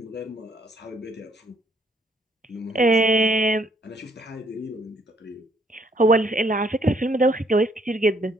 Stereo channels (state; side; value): normal; both; correlation 0.67